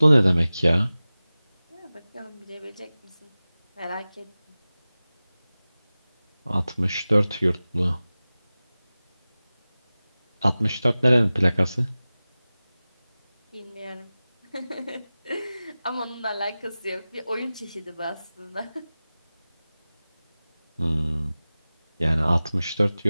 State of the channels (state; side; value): inverted; both; correlation -0.97